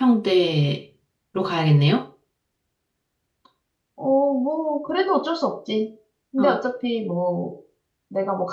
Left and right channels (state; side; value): identical; both; correlation 1.00